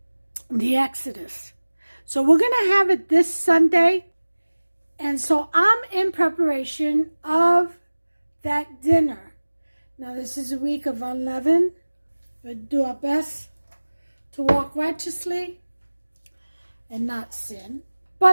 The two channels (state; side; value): inverted; both; correlation -1.00